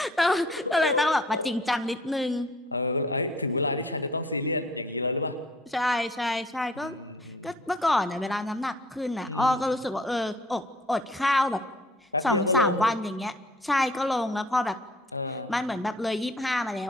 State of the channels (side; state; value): both; normal; correlation 0.53